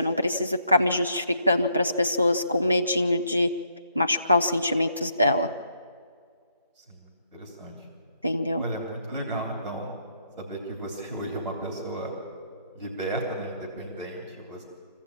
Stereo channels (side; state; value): both; inverted; correlation -0.71